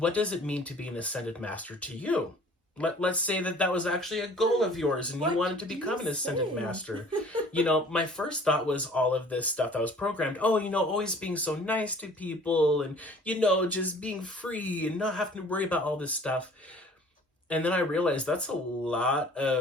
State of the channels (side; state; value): both; normal; correlation 0.50